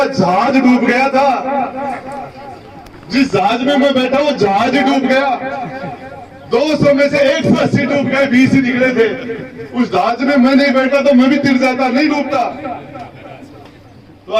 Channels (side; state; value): both; identical; correlation 1.00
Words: जहाज डूब गया था। जिस जहाज में मैं बैठा वो जहाज ही डूब गया। 200 में से 180 डूब गए, 20 ही निकले थे। उस जहाज में मैं नहीं बैठा तो मैं भी तिर जाता, नहीं डूबता। तो